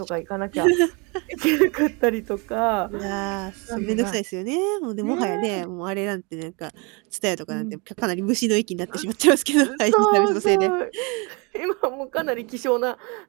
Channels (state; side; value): quieter; left; 30.6 dB